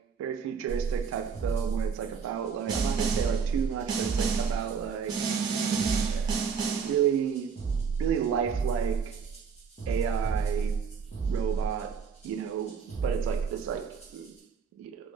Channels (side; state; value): left; quieter; 6.2 dB